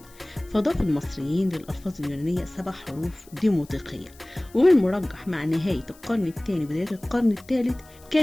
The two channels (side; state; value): left; noise; hiss, 25 dB below the sound